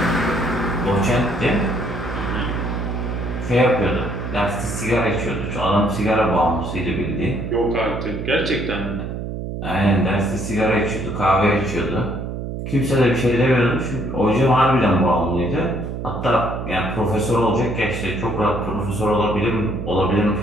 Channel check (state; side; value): noise; right; hum, 6 dB below the sound